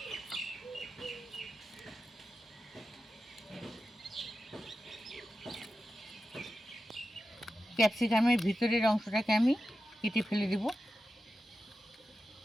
ক্যাপসিকামের ভিতরের অংশটাকে আমি কেটে ফেলে দেব,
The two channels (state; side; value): normal; both; correlation 0.91